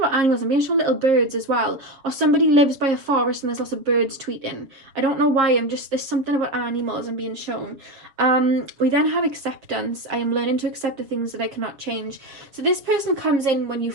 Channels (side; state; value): left; late; 7.2 ms